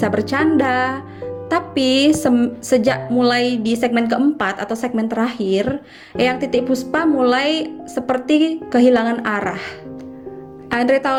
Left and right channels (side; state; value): both; identical; correlation 1.00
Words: bercanda, tapi sejak mulai di segmen keempat atau segmen terakhir, Eyang Titi Puspa mulai seperti kehilangan arah. Andre